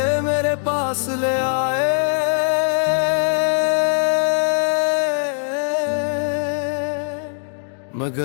मेरे पास ले आए।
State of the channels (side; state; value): right; silent; digital silence